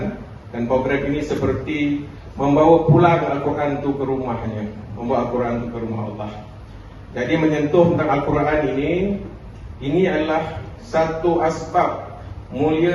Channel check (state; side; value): identical; both; correlation 1.00